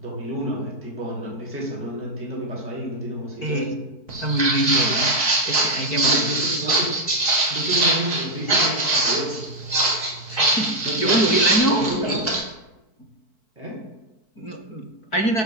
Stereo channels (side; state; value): right; late; 4.6 ms